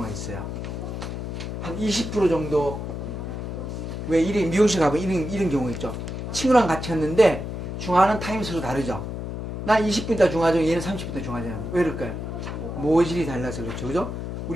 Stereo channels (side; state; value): left; noise; hum, 5 dB below the sound